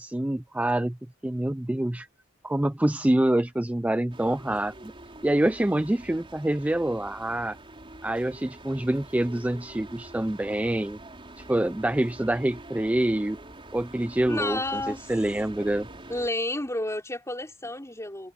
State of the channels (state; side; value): normal; both; correlation 0.92